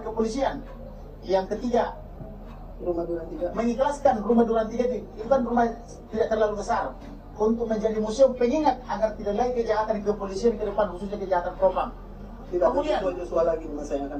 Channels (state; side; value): identical; both; correlation 1.00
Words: kepolisian. Yang ketiga, mengikhlaskan rumah Duren 3 itu kan rumah tidak terlalu besar, untuk menjadi museum pengingat agar tidak lagi kejahatan kepolisian ke depan, khususnya kejahatan propam. Kemudian Joshua lagi di masa yang akan